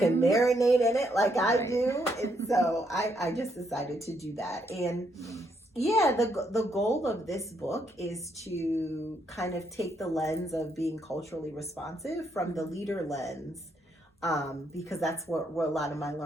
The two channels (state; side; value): normal; both; correlation 0.75